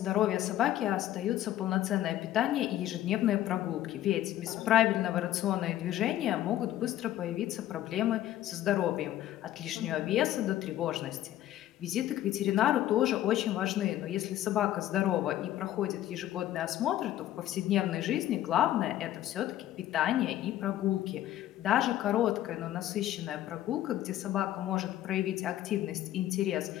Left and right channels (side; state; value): right; quieter; 13.3 dB